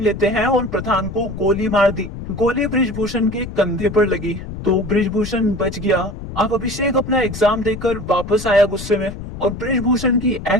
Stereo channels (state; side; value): noise; left; rumble, 10 dB below the sound